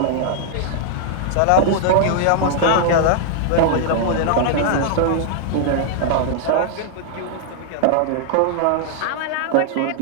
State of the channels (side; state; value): both; different; correlation -0.01